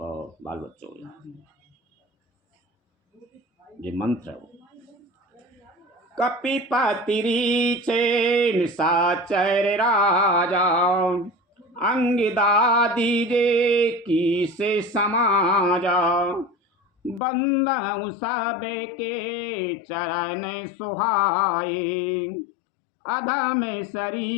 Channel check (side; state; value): right; drops out; at 17.2 s